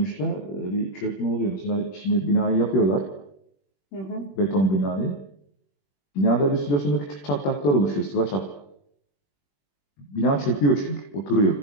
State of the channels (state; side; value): late; right; 21 ms